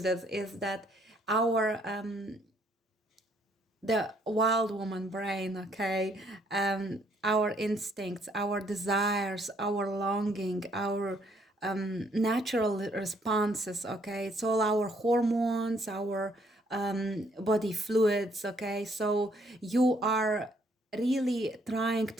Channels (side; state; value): both; normal; correlation 0.67